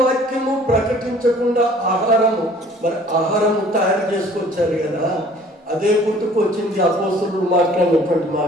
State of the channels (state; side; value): normal; both; correlation 0.53